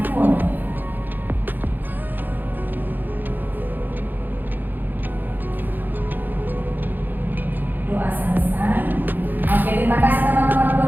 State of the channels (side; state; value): left; late; 0.088 ms